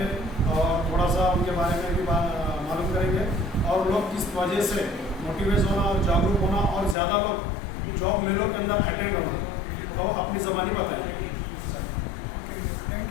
और थोड़ा सा उनके बारे में भी मालूम करेंगे और लोग किस वजह से मोटिवेट होना और जागरूक होना और ज़्यादा लोग जॉब मेलों के अंदर अटेंड होना, तो अपनी ज़बानी बताएंगे।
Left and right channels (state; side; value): drops out; right; at 7.0 s